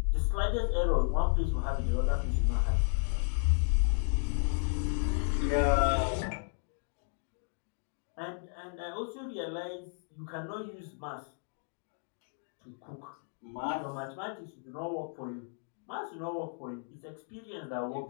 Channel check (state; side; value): silent; right; 55 dB below the other